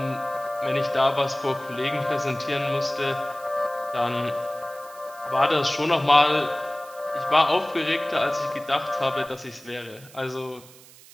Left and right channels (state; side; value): noise; right; hiss, 22 dB below the sound